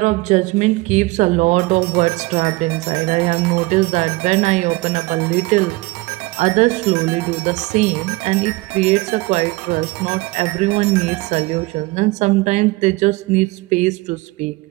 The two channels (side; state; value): left; quieter; 21.9 dB